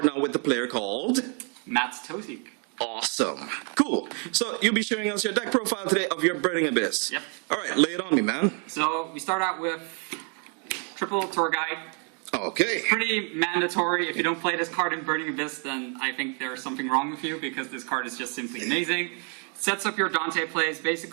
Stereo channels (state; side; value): quieter; left; 39.8 dB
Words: now with the player called Matt's Tosiek. Awesome. Cool. So you'll be sharing us your deck profile today of your Burning Abyss. Yep. Alright, lay it on me, man. So we start out with triple tour guide. Okay. Pretty mandatory. If you don't play this card in Burning Abyss, then I think there's something wrong with you because this card is just simply amazing. Sets up your Dante plays.